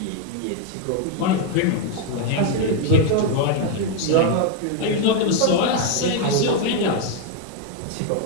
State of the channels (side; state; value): both; different; correlation 0.01